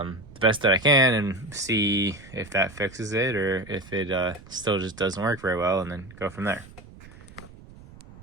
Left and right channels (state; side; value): noise; right; rumble, 20 dB below the sound